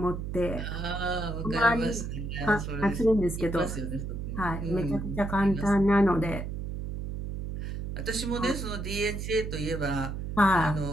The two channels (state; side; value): noise; right; hum, 5 dB below the sound